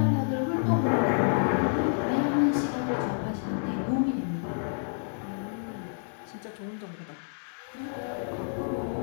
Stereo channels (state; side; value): silent; right; digital silence